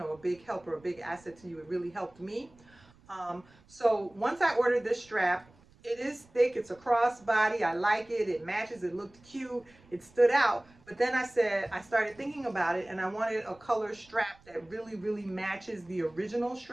big help or a big asset to you. It really helped me. So once I ordered this strap, it is thick. It's a crossbody. I like it. It matches. It looked cute. It stood out. But then I started thinking about it, and I wanted a color strap that really, really matches the original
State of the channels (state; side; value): noise; right; rumble, 28 dB below the sound